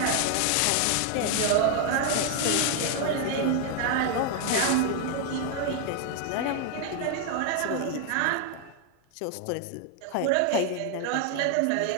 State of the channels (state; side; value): different; both; correlation 0.00